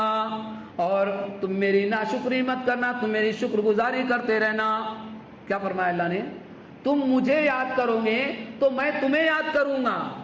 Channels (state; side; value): identical; both; correlation 1.00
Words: اور تم میری ناشکری مت کرنا، تم میری شکر گزاری کرتے رہنا۔ کیا فرمایا اللہ نے؟ تم مجھے یاد کرو گے تو میں تمہیں یاد کروں گا۔